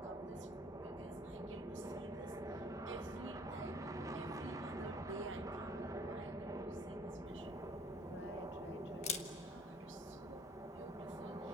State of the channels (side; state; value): both; normal; correlation 0.55